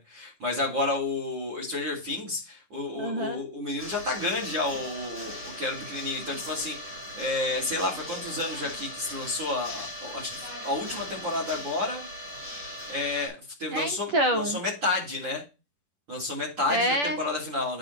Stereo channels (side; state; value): left; late; 10 ms